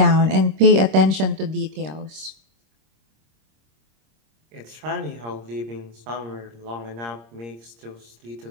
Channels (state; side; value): late; left; 26 ms